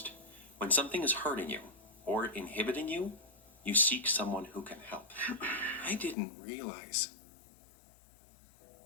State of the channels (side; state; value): right; drops out; at 6.2 s